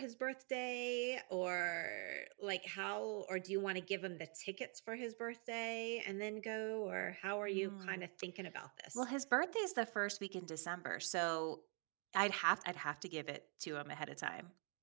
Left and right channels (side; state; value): left; quieter; 37.3 dB